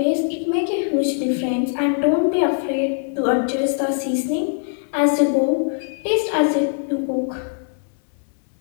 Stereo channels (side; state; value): right; silent; 65 dB below the other